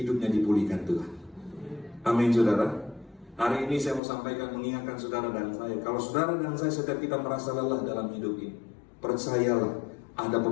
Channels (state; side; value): drops out; right; at 4.0 s